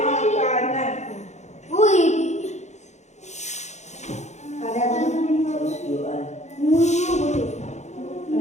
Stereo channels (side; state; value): right; late; 0.33 ms